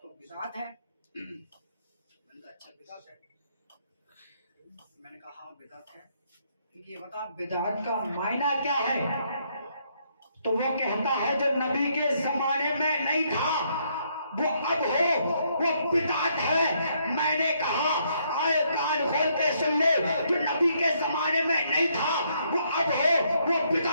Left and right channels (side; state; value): both; inverted; correlation -0.72